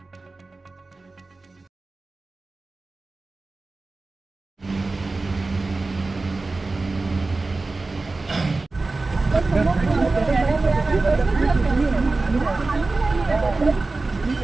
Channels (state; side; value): quieter; left; 3.5 dB